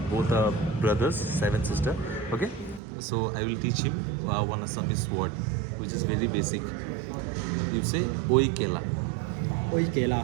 both are brothers, 7 sisters. Okay, so I will teach him one Assamese word, which is very basic. You say Oi Kela. Oi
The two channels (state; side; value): drops out; left; at 2.8 s